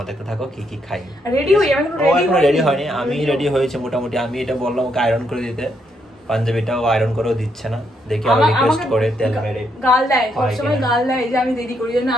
দেখতে থাকো কি কি খাই। রেডি হই, আমি এখনো রেডি হয়নি। আমি রেডি হয়েছে মোটামুটি। আমি এটা বললাম ওকে আয়রন করে দিতে, পাঞ্জাবিটাও আয়রন করেও দিচ্ছে না, দেখি আবার রিকোয়েস্ট করে তেল মেরে গাল দেয়, সবসময় গাল দেয় যে আমি দেরি করি, জন্য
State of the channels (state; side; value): normal; both; correlation 0.76